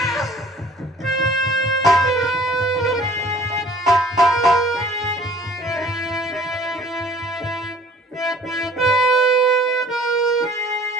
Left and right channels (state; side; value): normal; both; correlation 0.52